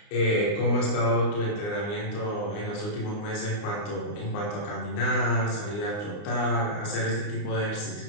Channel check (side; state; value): right; late; 29 ms